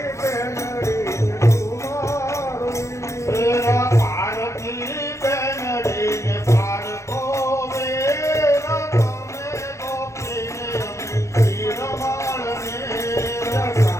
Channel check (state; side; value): late; right; 0.14 ms